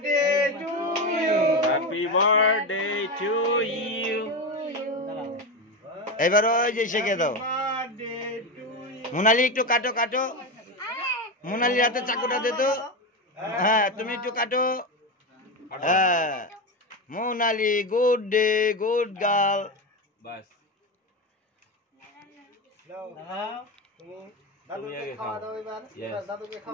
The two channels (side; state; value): both; normal; correlation 0.16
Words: Happy birthday to you. এবার ওই যে শেখে দাও। মোনালি একটু কাটো কাটো, মোনালির হাতে চাকুটা দে তো। হ্যাঁ তুমি একটু কাটো। হ্যাঁ Monali, good day, good girl. বাস দাদুকে খাওয়া দাও এবার, দাদুকে